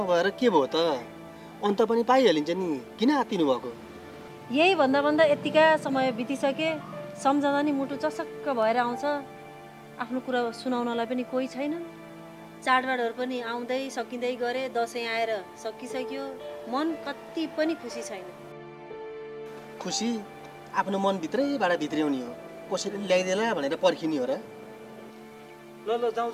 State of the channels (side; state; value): both; identical; correlation 1.00